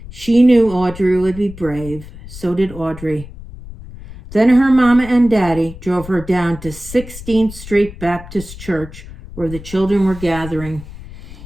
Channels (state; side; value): noise; left; rumble, 14 dB below the sound